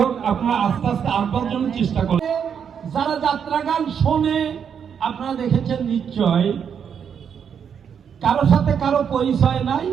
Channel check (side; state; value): left; quieter; 7.6 dB